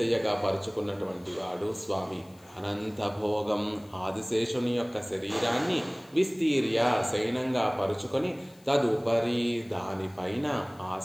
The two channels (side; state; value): left; noise; hiss, 28 dB below the sound